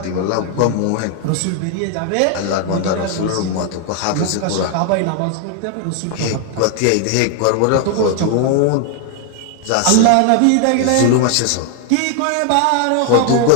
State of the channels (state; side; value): different; both; correlation 0.00